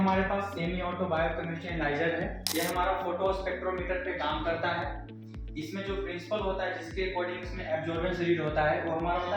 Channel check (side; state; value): both; identical; correlation 1.00